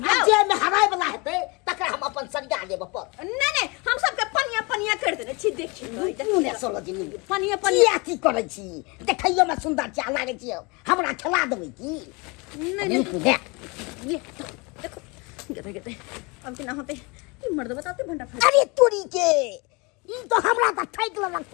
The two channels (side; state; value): right; quieter; 27.9 dB